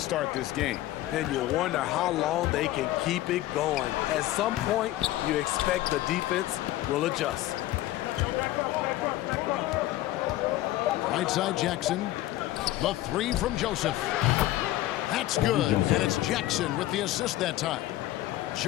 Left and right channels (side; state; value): right; quieter; 15.5 dB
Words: this game. And you wonder how long they can keep it going. At some point, you expect the defense will adjust. Right side Jackson. The three from Joseph. That's good. And it's Jackson with the assist that time.